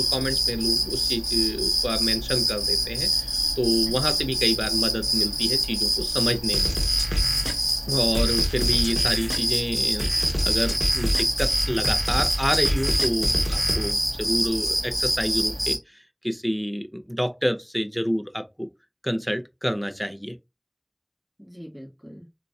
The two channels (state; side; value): identical; both; correlation 1.00